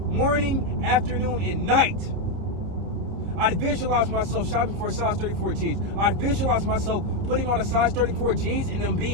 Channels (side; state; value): left; late; 30 ms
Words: afternoon, and night. I'd visualize myself shopping for a size 34 jeans. I'd visualize myself putting on a size 34 jeans and them